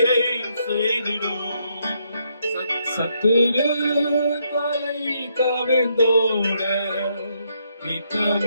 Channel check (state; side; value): inverted; both; correlation -0.75